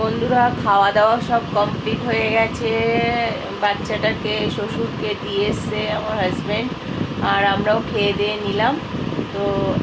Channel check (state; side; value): identical; both; correlation 1.00